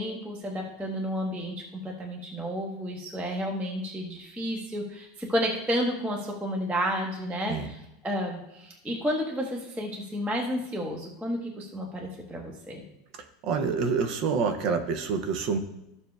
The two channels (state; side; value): normal; both; correlation 0.45